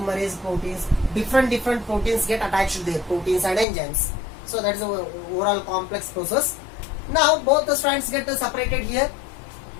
proteins, different proteins get attached there, proteins and enzymes. So that is the overall complex process. Now both the strands get separated here.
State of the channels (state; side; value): drops out; right; at 3.7 s